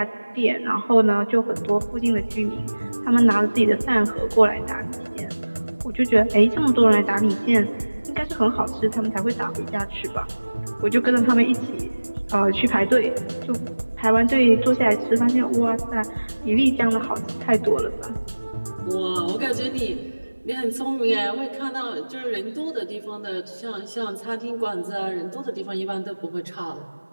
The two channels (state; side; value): inverted; both; correlation -1.00